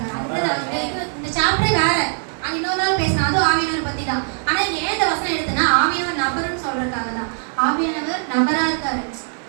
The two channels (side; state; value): left; silent; 58 dB below the other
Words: இந்த சாப்டரே வேற. அது இன்னொரு நாள் பேசலாம். அதுவும் ஆவியானவர் பத்தி தான். ஆனா ஏன் இந்த வசனம் எடுத்தனா ஆவியானவர் நபர்னு சொல்றதுக்காக தான். ஆவியானவர் நபரா இருக்காரு.